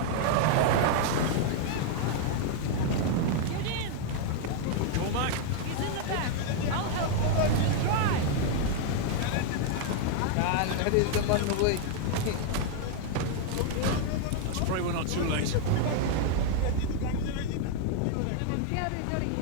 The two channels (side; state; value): both; different; correlation 0.00